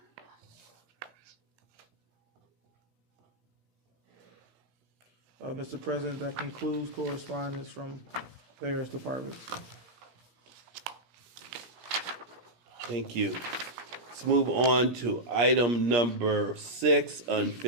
Mr. President, that concludes correspondence from various departments. Thank you. Let's move on to item number 6,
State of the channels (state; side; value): late; left; 17 ms